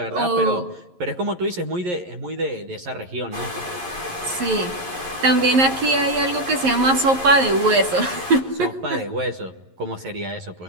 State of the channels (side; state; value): left; late; 11 ms